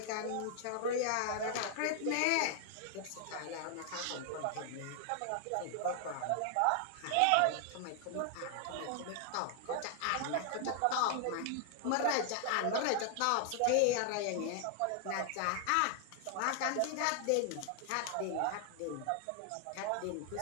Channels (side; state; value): both; different; correlation 0.00